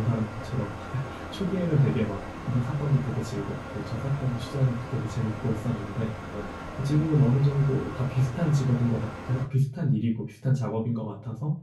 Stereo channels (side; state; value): both; identical; correlation 1.00